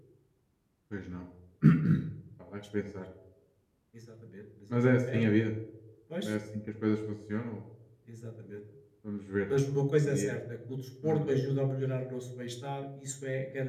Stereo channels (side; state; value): both; identical; correlation 1.00